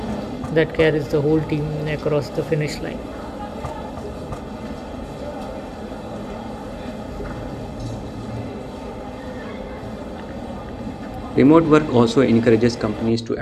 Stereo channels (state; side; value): identical; both; correlation 1.00